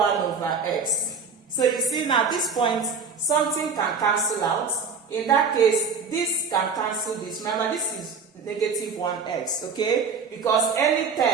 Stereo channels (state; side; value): quieter; left; 5.1 dB